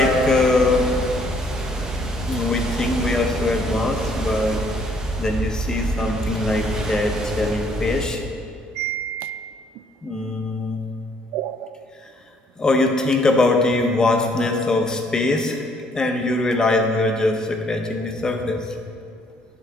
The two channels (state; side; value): normal; both; correlation 0.65